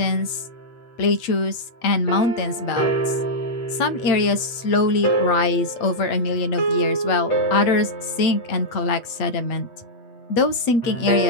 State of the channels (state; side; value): late; right; 8.3 ms